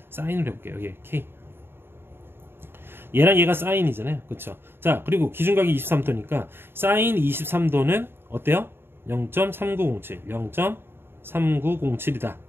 사인을 해볼게요. 여기 K 얘랑 얘가 사인이잖아요. 그쵸? 자 그리고 기준각이 23도니까 사인 23도는 어때요? 0.3907 0.3907이다.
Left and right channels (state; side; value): late; left; 0.11 ms